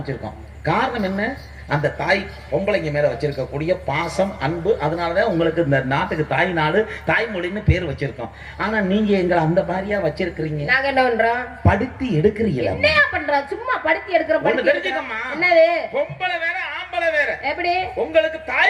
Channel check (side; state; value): both; identical; correlation 1.00